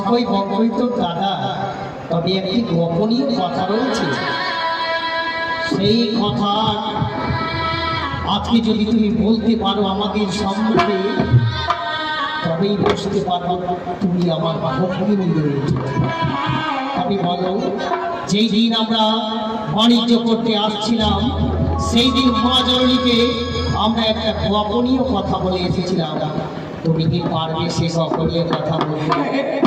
বঙ্কই তোর দাদা। তবে একটি গোপনীয় কথা রয়েছে, সেই কথা আজকে যদি তুমি বলতে পারো আমাদের সম্মুখে, তবেই বুঝতে পারবো তুমি আমার ভগ্নী রয়েছে। তবে বলো, যেই দিন আমরা বাণিজ্য করতে আসছিলাম সেই দিন মহাজননীকে আমরা একটা গোপনীয় কথা বলে এসেছিলাম। তুমি কি পারবে সেই গোপনীয় কথা বলতে?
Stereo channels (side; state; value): both; identical; correlation 1.00